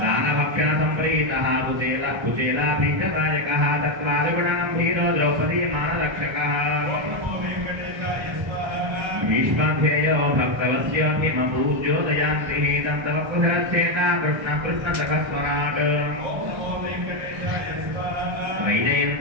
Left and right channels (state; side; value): late; left; 1.3 ms